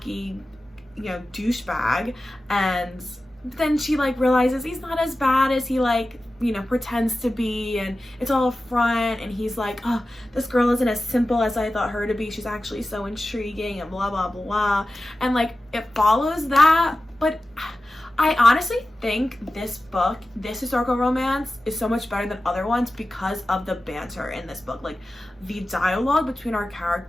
you know, douchebag, and then she like realizes he's not as bad as he like, you know, pretends to be, and it's all a front, and he's like, oh, this girl isn't as simple as I thought her to be, she's actually so intriguing, and blah blah blah. And like it follows that, but I honestly think this book, this historical romance, is so much better than other ones because of the banter in this book. Like the dialogue between our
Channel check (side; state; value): both; normal; correlation 0.94